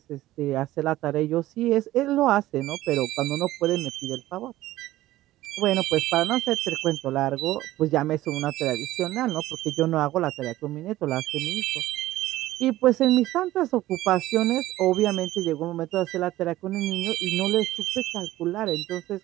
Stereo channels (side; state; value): left; quieter; 15.7 dB